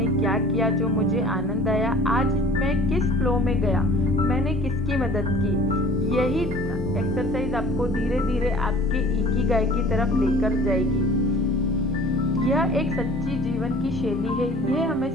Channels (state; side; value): normal; both; correlation 0.48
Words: क्या किया जो मुझे आनंद आया, आज मैं किस फ्लो में गया, मैंने किसकी मदद की। यही एक्सरसाइज आपको धीरे धीरे आपके इकिगाई की तरफ लेकर जाएगी। यह एक सच्ची जीवन की शैली है। यह हमें